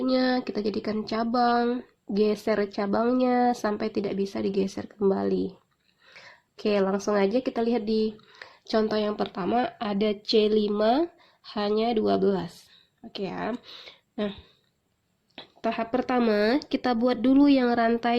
kita jadikan cabang, geser cabangnya sampai tidak bisa digeser kembali. Oke, langsung aja kita lihat di contoh yang pertama, ada C5 hanya 12. Oke ya. Nah, tahap pertama, kita buat dulu yang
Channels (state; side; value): identical; both; correlation 1.00